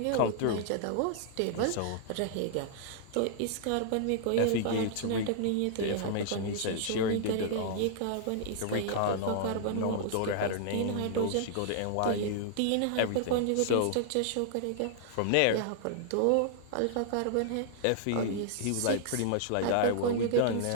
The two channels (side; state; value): both; different; correlation -0.01